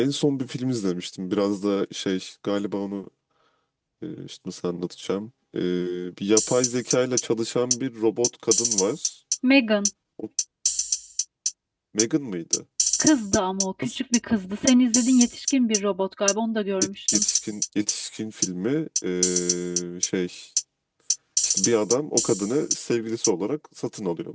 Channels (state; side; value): identical; both; correlation 1.00